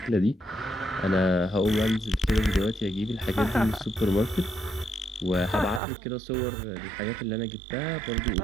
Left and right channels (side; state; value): left; drops out; at 5.8 s